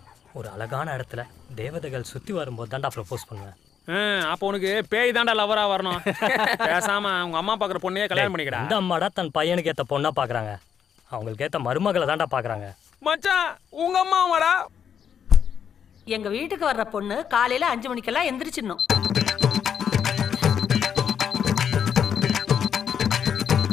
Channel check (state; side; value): quieter; right; 8.1 dB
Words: ஒரு அழகான இடத்துல தேவதைகள் சுத்தி வரும்போது தான்டா ப்ரப்போஸ் பண்ணுவேன். அப்போ உனக்கு பேய் தாண்டா லவரா வரணும். பேசாம உங்க அம்மா பாக்குற பொண்ணையே கல்யாணம் பண்ணிக்கடா. இந்த அம்மாடா தன் பையனுக்கு ஏத்த பொண்ணா பாக்குறாங்க. அவங்களுக்கு ஏத்த மருமகளை தான்டா பாக்குறாங்க. மச்சான் உங்க அம்மா வாடா. எங்க வீட்டுக்கு வர்ற பொண்ணு காலையில 5 மணிக்கெல்லாம் எந்திரிச்சிடணும்.